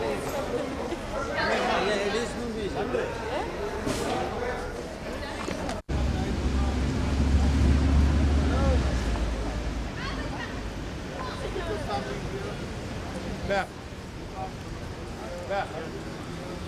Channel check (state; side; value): identical; both; correlation 1.00